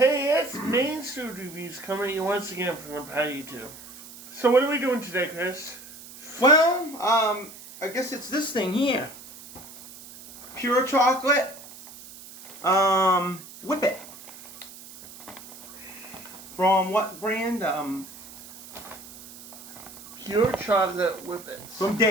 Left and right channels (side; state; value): right; noise; hiss, 17 dB below the sound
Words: it's MAINE'S food reviews coming at you once again from Empire YouTube. So what are we doing today, Chris? Well, I guess it's this thing here. Pure chocolate, Whippet. From what brand? Pure chocolate Whippet. From